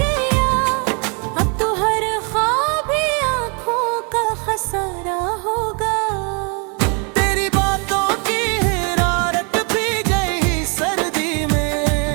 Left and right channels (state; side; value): quieter; left; 35.5 dB